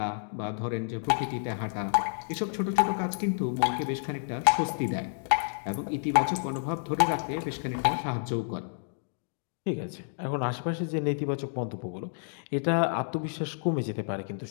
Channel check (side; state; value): right; silent; digital silence